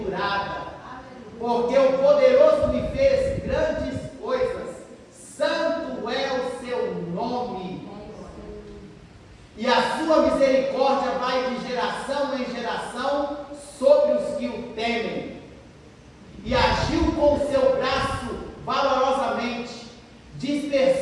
porque o poderoso me fez grandes coisas, santo é o seu nome, e a sua misericórdia vai de geração em geração sobre os que o temem. E agiu com o seu braço valorosamente,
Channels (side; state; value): both; identical; correlation 1.00